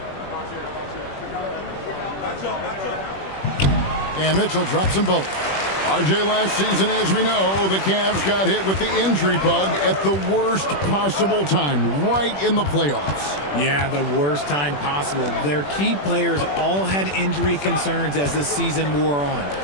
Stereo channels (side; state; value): right; late; 21 ms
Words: And Mitchell drops them both. RJ, last season, as we know, the Cavs got hit with the injury bug at the worst possible time, right in the playoffs. Yeah, the worst time possible. Their key players all had injury concerns as the season wore on.